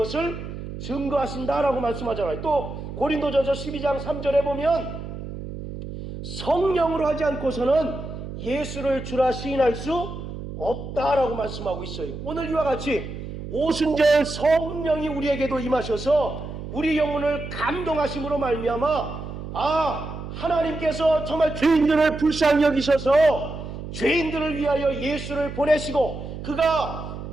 증거하신다라고 말씀하잖아요. 또 고린도전서 12장 3절에 보면 성령으로 하지 않고서는 예수를 주라 시인할 수 없다라고 말씀하고 있어요. 오늘 이와 같이 오순절 성령이 우리에게도 임하셔서 우리 영혼을 감동하심으로 말미암아 하나님께서 정말 죄인들을 불쌍히 여기셔서 죄인들을 위하여 예수를 보내시고 그가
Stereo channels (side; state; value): right; noise; hum, 9 dB below the sound